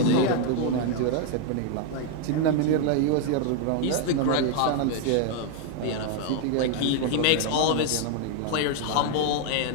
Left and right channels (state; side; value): different; both; correlation 0.00